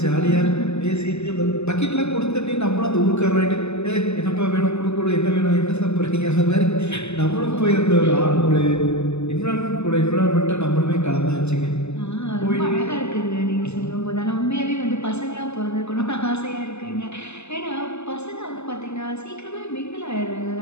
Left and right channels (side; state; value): right; late; 0.80 ms